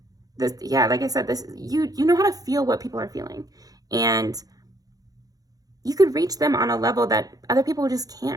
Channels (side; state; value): left; late; 0.18 ms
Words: Like I said, you know how to feel what people are feeling, and you could reach them on a level that other people just